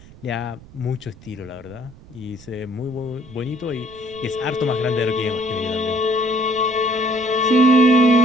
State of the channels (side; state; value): right; noise; rumble, 21 dB below the sound